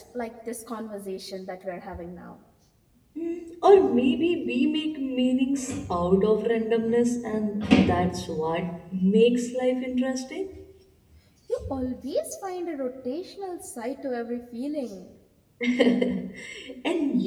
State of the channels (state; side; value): identical; both; correlation 1.00